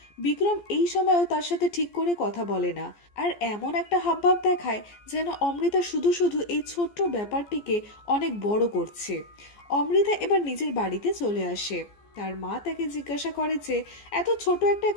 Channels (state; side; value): late; right; 14 ms